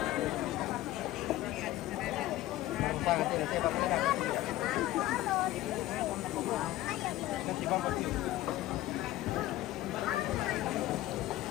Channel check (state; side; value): quieter; right; 15.7 dB